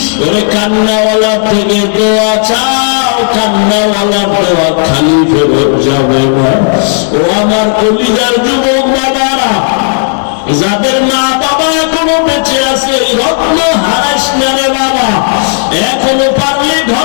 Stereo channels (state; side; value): silent; right; digital silence